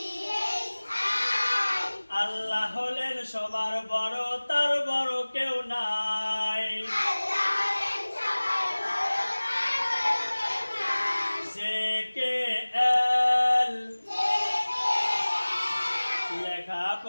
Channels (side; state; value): both; inverted; correlation -1.00